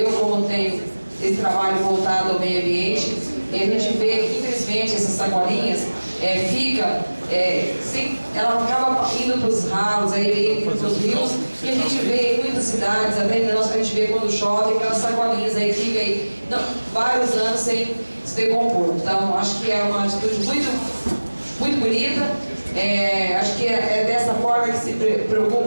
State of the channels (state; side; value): inverted; both; correlation -1.00